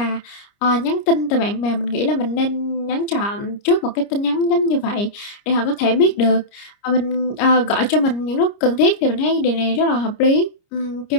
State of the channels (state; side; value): late; right; 29 ms